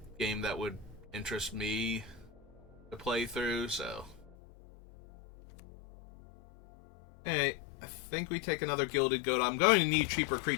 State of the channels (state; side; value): drops out; right; at 4.4 s